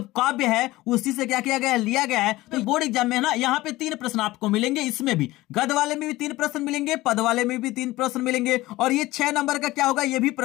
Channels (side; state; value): right; quieter; 18.2 dB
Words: काव्य है उसी से क्या किया गया है, लिया गया है। तो बोर्ड एग्जाम में ना यहाँ पे 3 प्रश्न आपको मिलेंगे, इसमें भी गद वाले में भी 3 प्रश्न मिलेंगे, पद वाले में भी 3 प्रश्न मिलेंगे और ये 6 नंबर का क्या होगा, ये भी